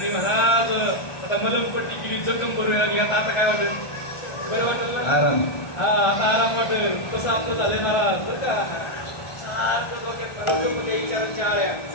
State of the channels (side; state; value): right; late; 1.3 ms